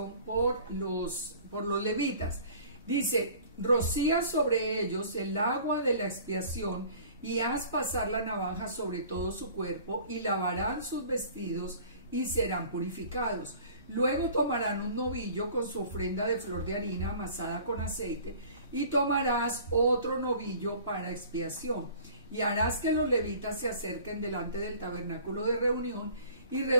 por los levitas. Dice: rocía sobre ellos el agua de la expiación y haz pasar la navaja sobre todo su cuerpo, y lavarán sus vestidos y serán purificados. Luego tomarán un novillo con su ofrenda de flor de harina amasada con aceite, y tomarás otro novillo para expiación, y harás que los levitas se acerquen delante del tabernáculo de reunión, y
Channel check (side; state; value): both; inverted; correlation -0.47